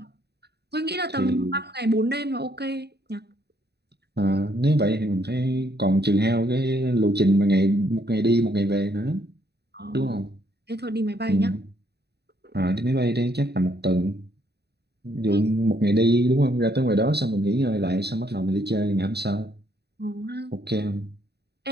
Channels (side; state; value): left; late; 0.48 ms